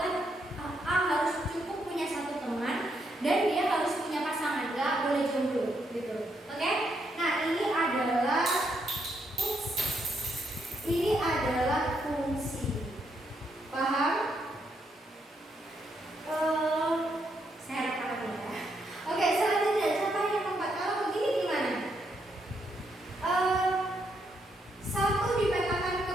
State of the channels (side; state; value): both; normal; correlation 0.77